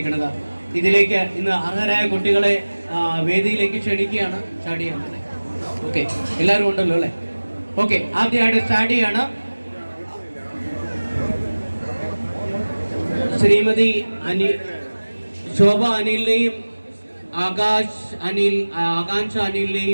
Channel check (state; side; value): inverted; both; correlation -1.00